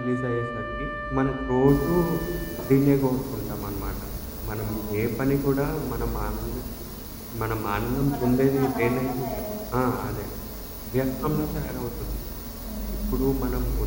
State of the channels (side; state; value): both; identical; correlation 1.00